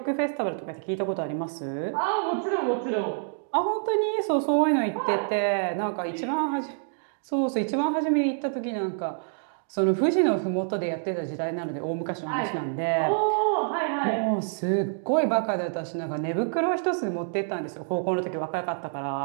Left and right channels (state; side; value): silent; left; digital silence